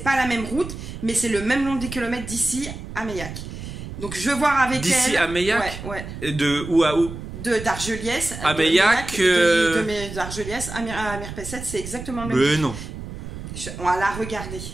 la même route, mais c'est le même nombre de kilomètres d'ici à Meillac. Donc je vais voir avec elle. D'ici à Meillac. Ouais. Et de où à où? D'Argeliès. À Meillac. D'Argeliès à Mirpesset, c'est exactement le même. Mais non. On va la regarder.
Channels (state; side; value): noise; right; rumble, 10 dB below the sound